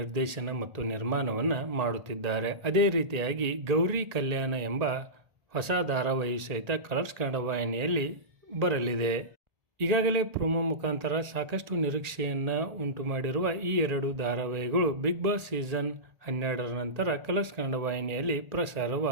ಮತ್ತು ನಿರ್ಮಾಣವನ್ನು ಮಾಡುತ್ತಿದ್ದಾರೆ. ಅದೇ ರೀತಿಯಾಗಿ ಗೌರಿ ಕಲ್ಯಾಣ ಎಂಬ ಹೊಸ ಧಾರಾವಾಹಿ ಸಹಿತ ಕಲರ್ಸ್ ಕನ್ನಡ ವಾಹಿನಿಯಲ್ಲಿ ಬರಲಿದೆ. ಈಗಾಗಲೇ ಪ್ರೊಮೋ ಮುಖಾಂತರ ಸಾಕಷ್ಟು ನಿರೀಕ್ಷೆಯನ್ನು ಉಂಟು ಮಾಡಿರುವ ಈ ಎರಡು ಧಾರಾವಾಹಿಗಳು ಬಿಗ್ ಬಾಸ್ ಸೀಸನ್ 12ರ ನಂತರ ಕಲರ್ಸ್ ಕನ್ನಡ ವಾಹಿನಿಯಲ್ಲಿ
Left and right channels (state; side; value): late; left; 1.8 ms